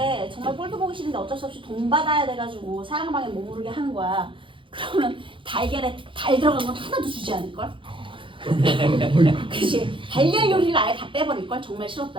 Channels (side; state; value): left; late; 0.25 ms